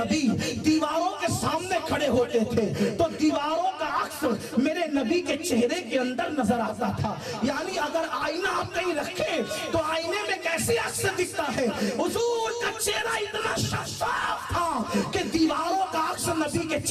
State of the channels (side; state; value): both; identical; correlation 1.00